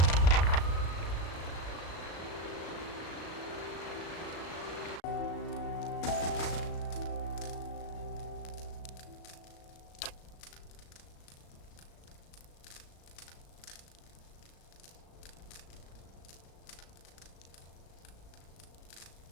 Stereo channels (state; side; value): late; right; 36 ms